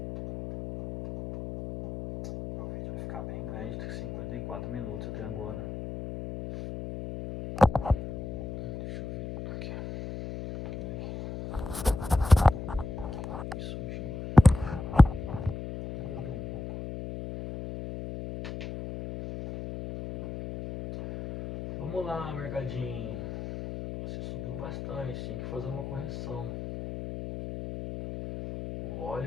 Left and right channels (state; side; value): noise; left; hum, 8 dB below the sound